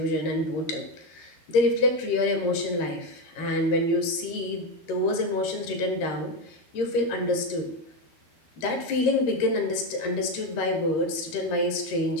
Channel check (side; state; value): right; late; 13 ms